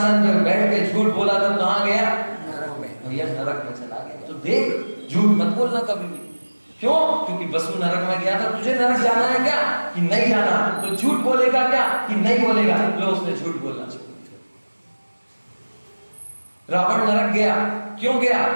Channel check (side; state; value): both; inverted; correlation -1.00